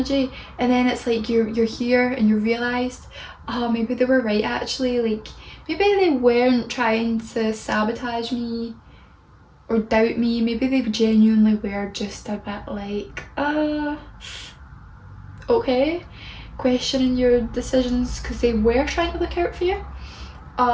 and then it's like you're here and you realised, oh, maybe they were right actually, like maybe they weren't trying to sabotage me or doubt me, maybe they genuinely were just a bit like, okay, questioning your decisions because they were trying to look out for you,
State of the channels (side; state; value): both; identical; correlation 1.00